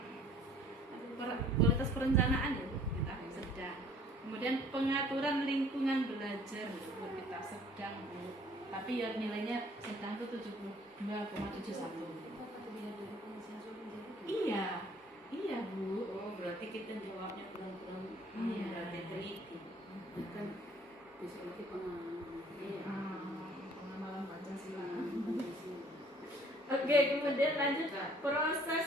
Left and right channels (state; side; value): normal; both; correlation 0.56